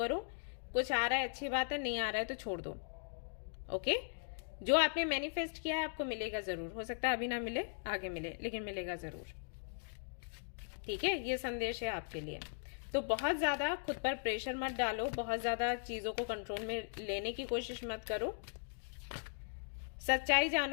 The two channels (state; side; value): silent; right; digital silence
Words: कुछ आ रहा है अच्छी बात है, नहीं आ रहा है तो छोड़ दो। ओके, जो आपने मैनिफेस्ट किया है आपको मिलेगा जरूर, हो सकता है अभी ना मिले, आगे मिले, लेकिन मिलेगा जरूर। ठीक है, ये संदेश है आपके लिए। तो बहुत ज्यादा खुद पर प्रेशर मत डालो, बहुत ज्यादा चीजों को कंट्रोल में लेने की कोशिश मत करो। सच्चाई